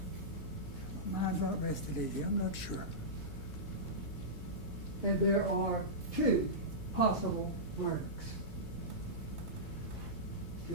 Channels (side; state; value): right; noise; hum, 17 dB below the sound